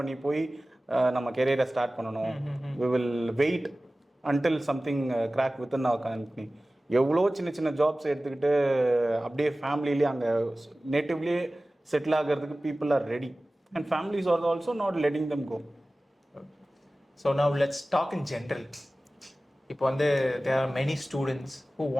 பண்ணி போய் நம்ம கெரியரை ஸ்டார்ட் பண்ணணும்? We will wait until something crack within our company. எவ்வளோ சின்ன சின்ன ஜாப்ஸ் எடுத்துக்கிட்டு அப்படியே ஃபேமிலியிலே அங்கே நேட்டிவ்லேயே செட்டில் ஆகிறதுக்கு people are ready. And families are also not letting them go. So now let's talk in general. இப்போ வந்து there are many students who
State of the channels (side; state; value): both; normal; correlation 0.97